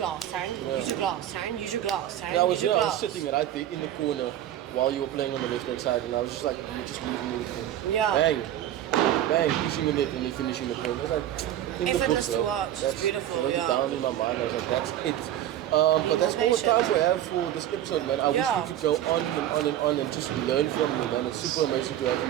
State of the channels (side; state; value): left; quieter; 12.0 dB